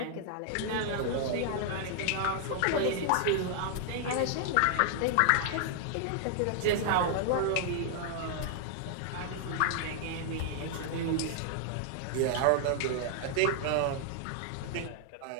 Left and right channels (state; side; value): different; both; correlation -0.01